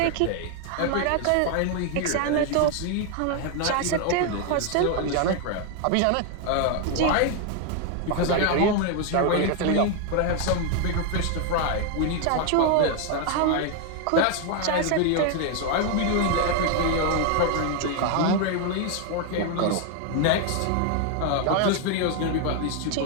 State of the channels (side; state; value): both; different; correlation 0.01